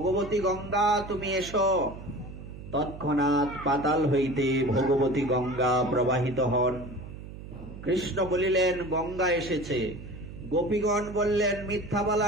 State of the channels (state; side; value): noise; right; hum, 13 dB below the sound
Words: গঙ্গা তুমি এসো। তৎক্ষণাৎ পাতাল হইতে ভগবতী গঙ্গা প্রবাহিত হন। কৃষ্ণ বলিলেন, গঙ্গা এসেছে। গোপীগণ বললেন, মিথ্যা